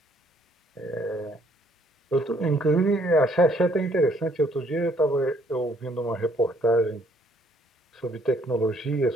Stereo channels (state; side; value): normal; both; correlation 0.65